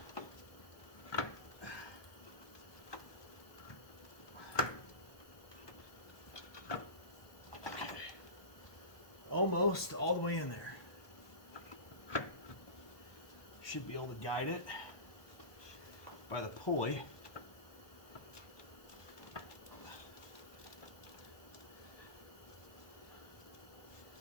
Almost all the way in there. Should be able to guide it by the pulley.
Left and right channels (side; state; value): right; late; 1.2 ms